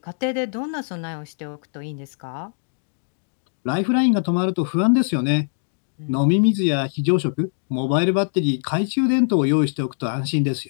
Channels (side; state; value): right; silent; digital silence